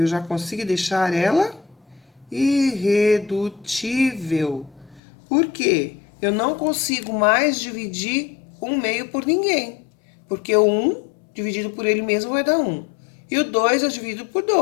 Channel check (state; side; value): drops out; right; at 5.0 s